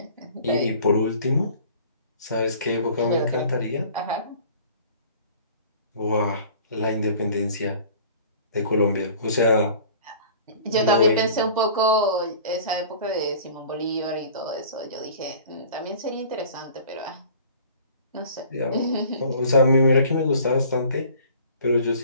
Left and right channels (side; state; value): both; inverted; correlation -0.47